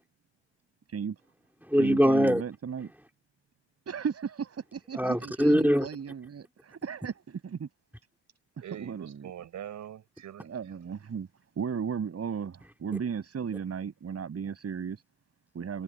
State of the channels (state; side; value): normal; both; correlation 0.81